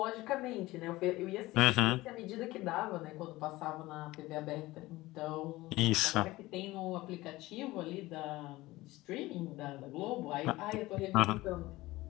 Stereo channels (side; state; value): right; quieter; 18.8 dB